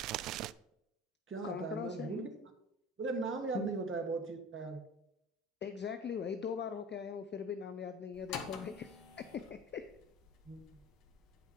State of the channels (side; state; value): both; normal; correlation 0.39